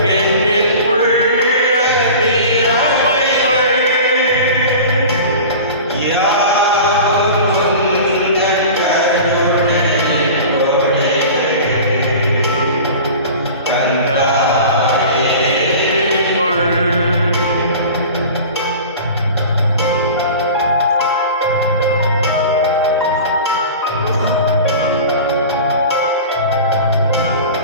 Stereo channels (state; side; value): inverted; both; correlation -0.37